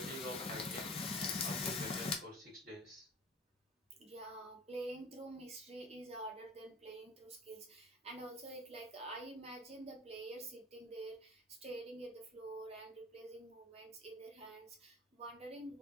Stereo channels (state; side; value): normal; both; correlation 0.41